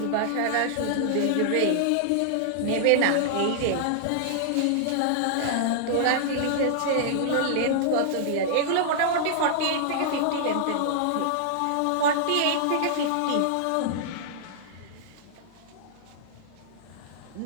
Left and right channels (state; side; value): different; both; correlation -0.01